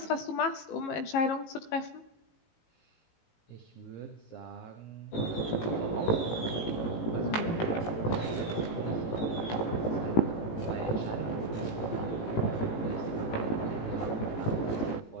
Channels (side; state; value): right; late; 18 ms